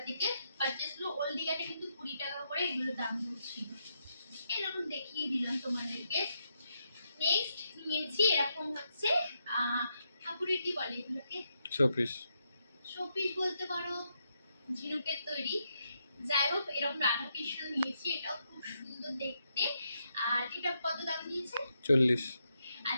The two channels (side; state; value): both; inverted; correlation -0.81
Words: থেকে পারচেস হলো। ওল্ড দীঘাতে কিন্তু 20 টাকা করে এগুলো দাম ছিল। এরকম দেখিয়ে দিলাম তোমাদেরকে। নেক্সট নিয়েছি এরকম হচ্ছে ঠাকুরের কি বলে এগুলোকে, শোপিস। শোপিস বলতে পারো, ঝিনুকের তৈরি। যাই হোক, এরকম রাধা কৃষ্ণ নিয়েছি, এটাও খুব সুন্দর দেখতে। আর এটা কত দাম নিয়েছে? 40।